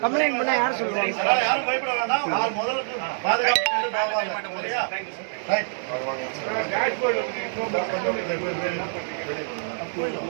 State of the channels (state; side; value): silent; left; 61 dB below the other